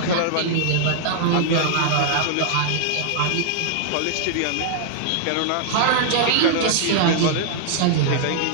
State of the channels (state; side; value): different; both; correlation -0.01